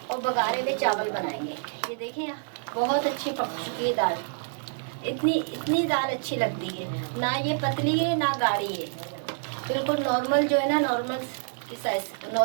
और बघारे हुए चावल बनाएंगे। ये देखें बहुत अच्छी पक चुकी है दाल। इतनी दाल अच्छी लगती है ना, ये पतली है ना गाढ़ी है, बिल्कुल नॉर्मल जो है ना, नॉर्मल की साइज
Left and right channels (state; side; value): silent; left; digital silence